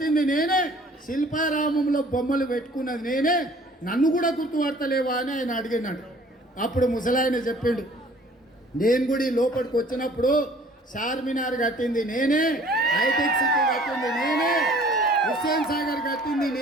నేనే, శిల్పారామంలో బొమ్మలు పెట్టుకున్నది నేనే, నన్ను కూడా గుర్తుపడతలేవా అని ఆయన అడిగినాడు. అప్పుడు ముసలాయన చెప్పిండు, నేను కూడా ఈ లోపలికి వచ్చినప్పుడు చార్మినార్ కట్టింది నేనే, హైటెక్ సిటీ కట్టింది నేనే, హుస్సేన్ సాగర్ కట్టింది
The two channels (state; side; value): normal; both; correlation 0.53